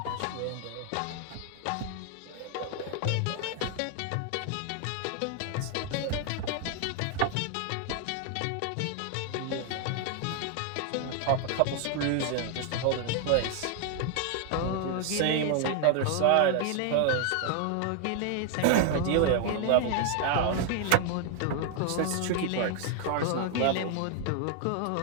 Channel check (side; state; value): both; different; correlation 0.00